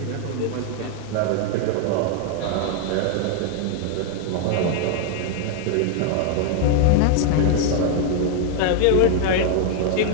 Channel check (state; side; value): different; both; correlation 0.00